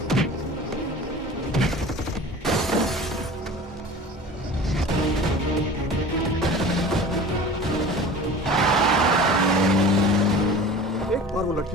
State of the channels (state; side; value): normal; both; correlation 0.39